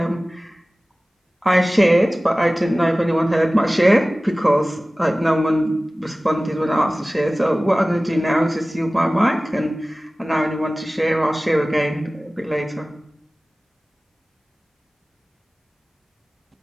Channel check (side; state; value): both; normal; correlation 0.97